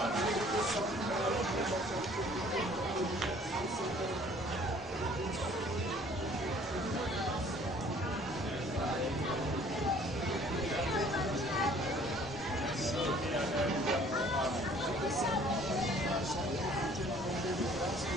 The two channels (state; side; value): normal; both; correlation 0.55